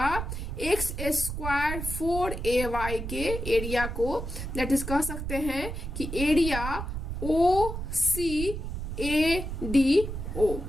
x स्क्वायर 4ay के एरिया को। दैट इज कह सकते हैं कि area OCADO।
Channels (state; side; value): noise; right; rumble, 5 dB below the sound